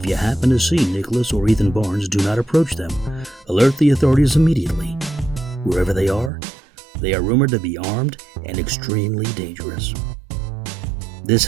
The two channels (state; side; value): drops out; left; at 6.3 s